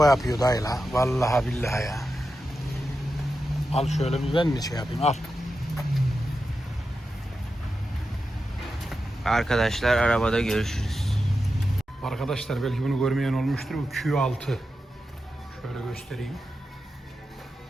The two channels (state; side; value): normal; both; correlation 0.90